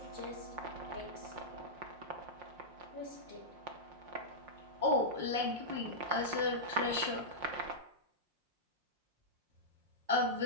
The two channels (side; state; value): left; late; 5.7 ms